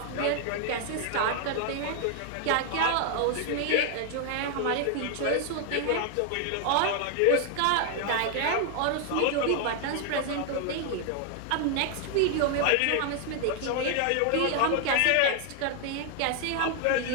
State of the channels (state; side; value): different; both; correlation 0.00